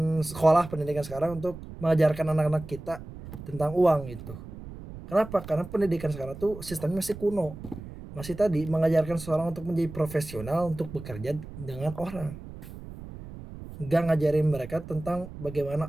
sekolah pendidikan sekarang untuk mengajarkan anak-anak kita tentang uang itu. Kenapa? Karena pendidikan sekarang tuh sistemnya masih kuno. Masih tadi mengajarkan seseorang untuk menjadi profesional untuk bekerja dengan orang. Gak ngajarin mereka tentang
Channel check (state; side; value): noise; right; rumble, 13 dB below the sound